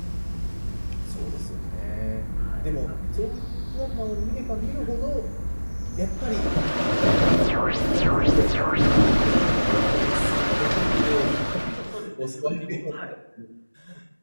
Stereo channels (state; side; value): inverted; both; correlation -1.00